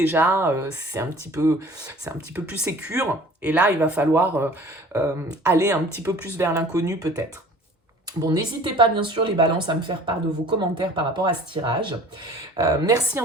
c'est un petit peu plus sécure. Et là, il va falloir aller un petit peu plus vers l'inconnu peut-être. Bon, n'hésitez pas bien sûr les balances à me faire part de vos commentaires par rapport à ce tirage. Merci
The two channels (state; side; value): normal; both; correlation 0.47